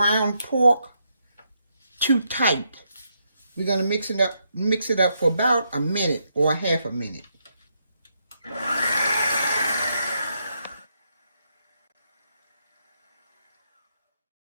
pork too tight. We're going to mix it up for about a minute or a half a minute. Next,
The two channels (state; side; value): inverted; both; correlation -0.79